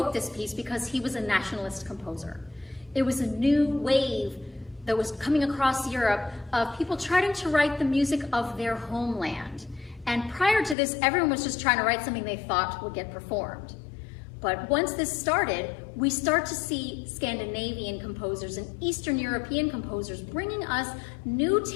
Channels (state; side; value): drops out; right; at 10.8 s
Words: this piece because he was a nationalist composer. It was a new wave that was coming across Europe of people trying to write the music of their homeland. And prior to this, everyone was just trying to write something they thought would get performed. But once this started, we start to see Scandinavian composers and Eastern European composers bringing us new